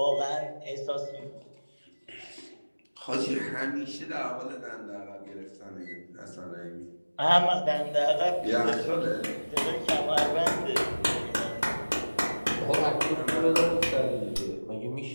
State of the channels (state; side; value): inverted; both; correlation -1.00